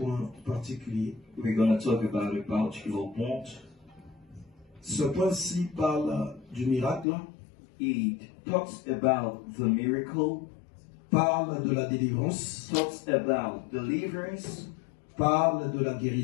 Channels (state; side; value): drops out; right; at 7.1 s